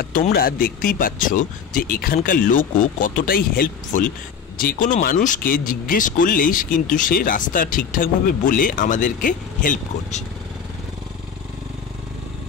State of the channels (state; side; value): quieter; right; 7.0 dB